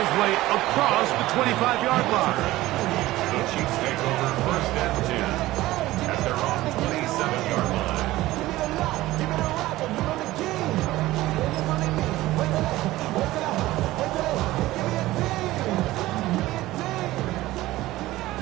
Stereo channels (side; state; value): left; quieter; 17.0 dB